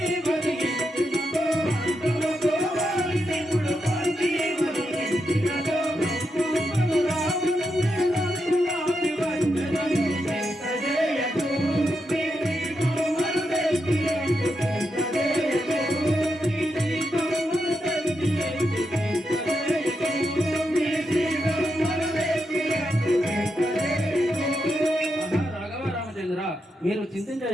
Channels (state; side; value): normal; both; correlation 0.85